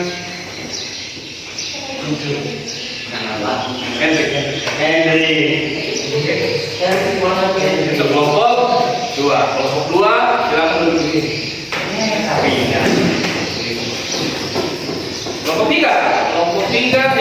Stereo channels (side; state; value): both; identical; correlation 1.00